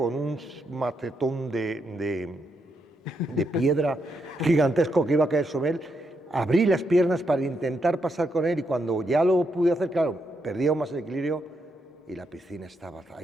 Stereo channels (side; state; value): both; normal; correlation 0.80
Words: un macetón de piedra gigantesco que iba a caer sobre él. Abrí las piernas para intentar pasar con él y cuando ya lo pude hacer, claro, perdí aún más el equilibrio y la piscina estaba